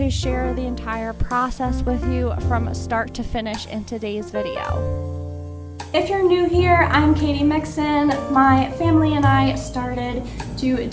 share the entire process with you from start to finish in today's video. If you're new here, I'm Katie Mixon. My family and I started to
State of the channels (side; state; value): both; identical; correlation 1.00